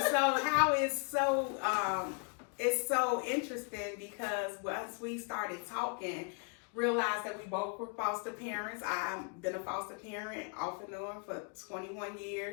how it's so interesting, because once we started talking, realized that we both were foster parents. I've been a foster parent off and on for 21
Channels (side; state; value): right; quieter; 39.6 dB